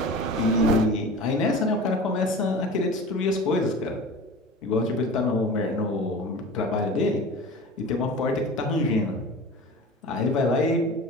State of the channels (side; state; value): both; normal; correlation 0.36